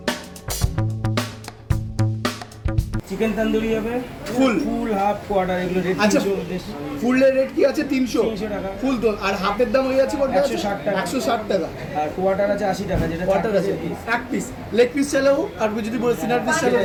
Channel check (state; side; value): identical; both; correlation 1.00